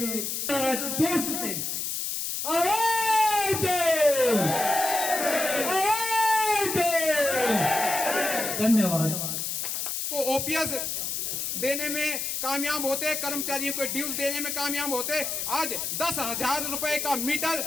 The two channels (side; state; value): left; noise; hiss, 2 dB below the sound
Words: जोश से आवाज दो, धन्यवाद। को ओपीएस देने में कामयाब होते, कर्मचारियों को ड्यूज देने में कामयाब होते। आज 10,000 रुपए का मीटर